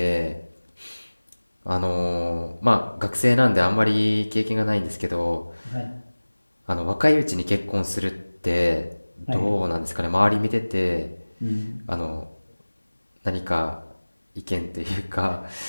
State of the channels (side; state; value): both; inverted; correlation -1.00